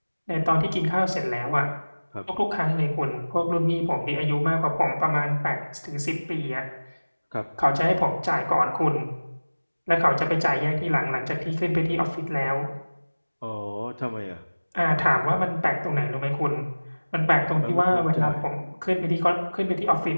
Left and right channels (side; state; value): both; inverted; correlation -1.00